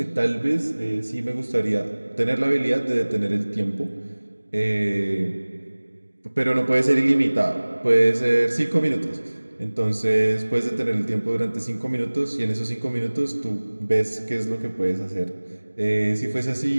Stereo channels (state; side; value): inverted; both; correlation -1.00